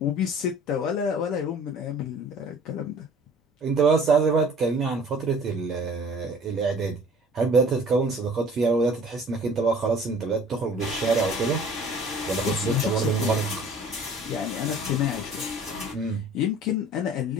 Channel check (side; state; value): both; normal; correlation 0.49